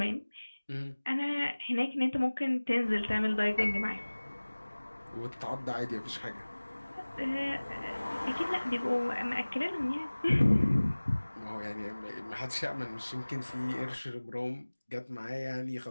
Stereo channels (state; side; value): inverted; both; correlation -1.00